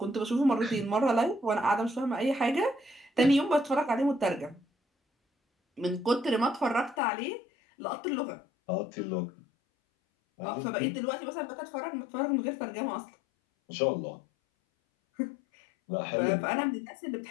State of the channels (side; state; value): right; drops out; at 7.0 s